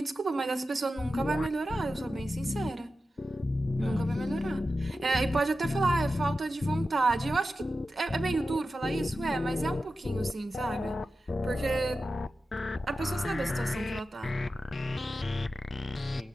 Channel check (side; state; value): both; normal; correlation 0.92